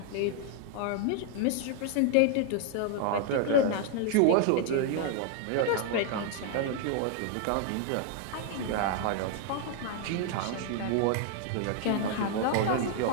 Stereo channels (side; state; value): both; different; correlation 0.00